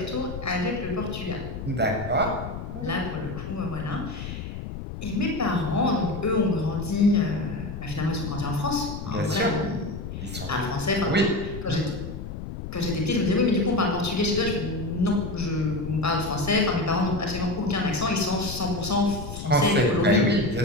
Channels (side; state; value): left; noise; rumble, 8 dB below the sound